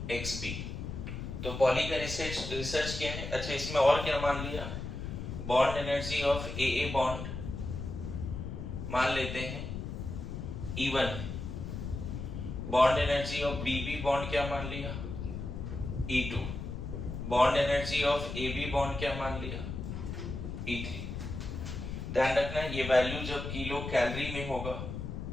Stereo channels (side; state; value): left; noise; rumble, 6 dB below the sound